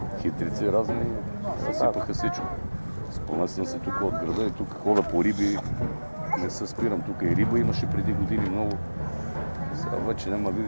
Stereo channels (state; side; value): inverted; both; correlation -1.00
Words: хитрици разни, съсипаха всичко. Спомня съм се тук от града и тук хода по риби, не се спирам, тук и риба имаше преди години много. Сега вече няма